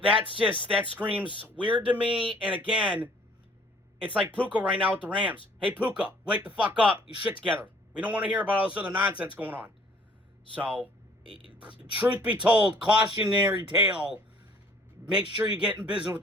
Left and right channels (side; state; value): both; normal; correlation 0.57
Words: that screams weird to me. And again, it's like Puka right now with the Rams. Hey, Puka, wake the fuck up. You shit together. We don't want to hear about all this other nonsense going on. So, truth be told, cautionary tale. Make sure you get in business with